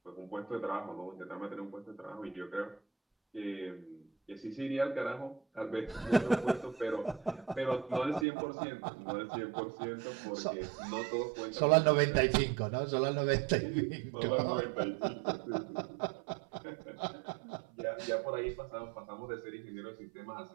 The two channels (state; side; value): drops out; left; at 8.2 s